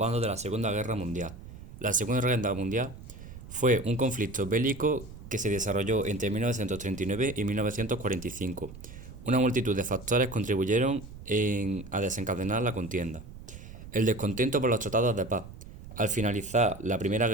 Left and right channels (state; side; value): noise; right; rumble, 15 dB below the sound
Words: de la Segunda Guerra Mundial. La Segunda Guerra Mundial fue un conflicto bélico que se desarrolló entre 1939 y 1945. Una multitud de factores contribuyeron a desencadenar la contienda. El descontento por los tratados de paz. Al finalizar la Primera